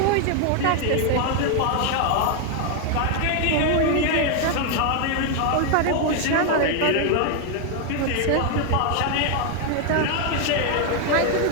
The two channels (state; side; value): different; both; correlation 0.01